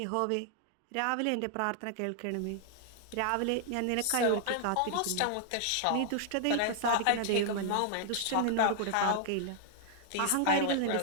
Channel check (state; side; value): different; both; correlation 0.00